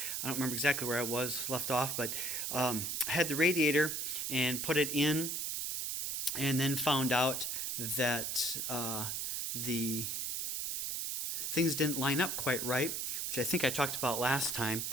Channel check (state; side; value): noise; right; hiss, 2 dB below the sound